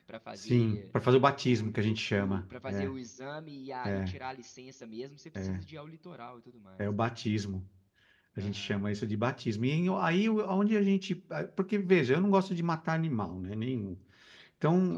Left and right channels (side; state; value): both; identical; correlation 1.00